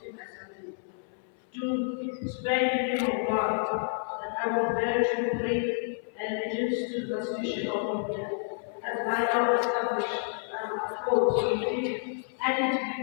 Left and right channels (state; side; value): silent; right; 58 dB below the other